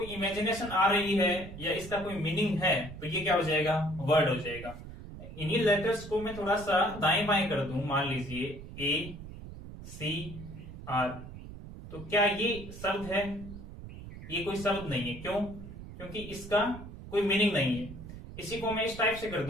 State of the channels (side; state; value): right; noise; rumble, 13 dB below the sound